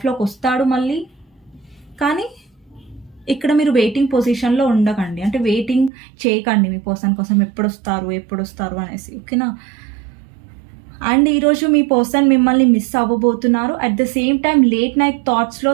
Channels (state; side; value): drops out; left; at 5.9 s